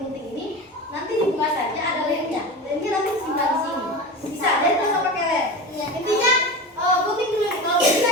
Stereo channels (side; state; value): both; normal; correlation 0.28